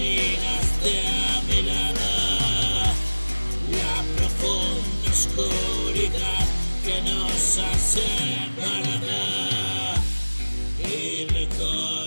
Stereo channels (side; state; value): both; inverted; correlation -1.00